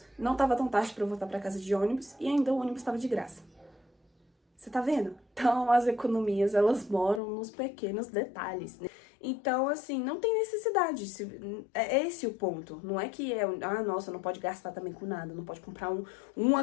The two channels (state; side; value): drops out; right; at 7.2 s